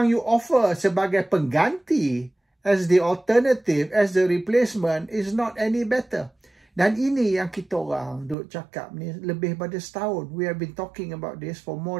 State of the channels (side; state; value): left; drops out; at 8.3 s